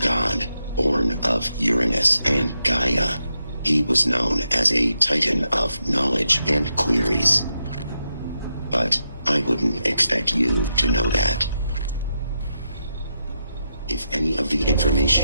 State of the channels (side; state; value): both; inverted; correlation -0.84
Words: born of Uranus and Gaia. He was known as a Titan of knowledge and queries. But I wouldn't expect you to know that. If any of the